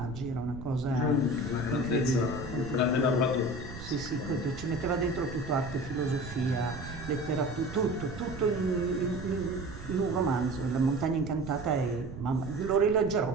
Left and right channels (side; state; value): right; noise; rumble, 11 dB below the sound